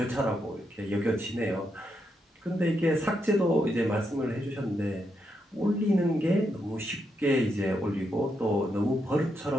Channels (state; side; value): normal; both; correlation 0.82